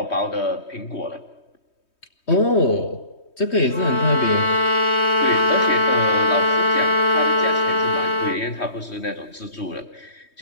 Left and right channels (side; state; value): right; late; 3.2 ms